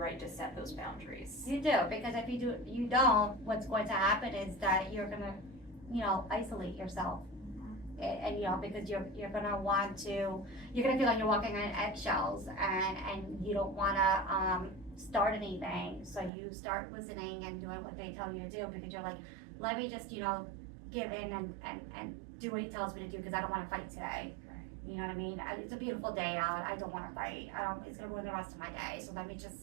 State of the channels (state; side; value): drops out; left; at 16.3 s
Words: to set those boundaries. You do, because if you don't, what's going to happen is that you're gonna, isolate yourself. And you know, because you're gonna want to, you're gonna feel like you're walking on eggshells, and you don't wanna start anything. So you start listening and doing what they tell you to do, because you're like, let me just, you know, give in and do what he tells me to do, because I don't wanna fight today. You know what I mean? It's a beautiful day out. I don't wanna fight. It's gonna ruin the rest of my day. So let me